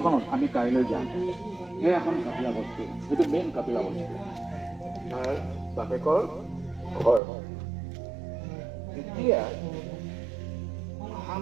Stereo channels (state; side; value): drops out; left; at 7.2 s